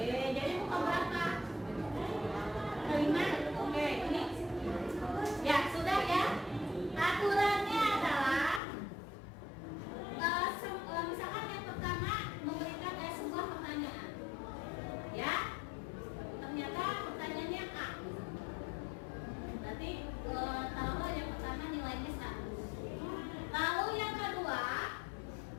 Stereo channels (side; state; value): right; drops out; at 8.6 s